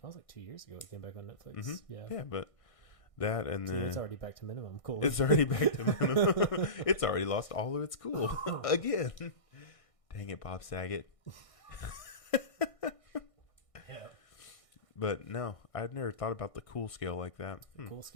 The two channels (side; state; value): right; late; 1.6 ms